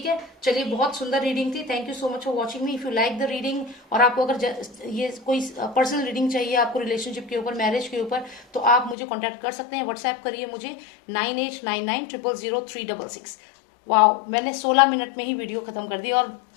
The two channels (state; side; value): drops out; right; at 9.0 s